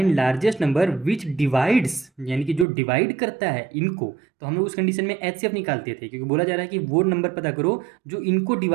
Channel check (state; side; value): drops out; left; at 2.7 s